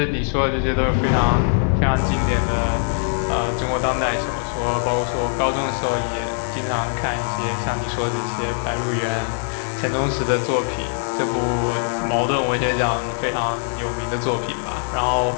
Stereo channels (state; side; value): silent; right; 64 dB below the other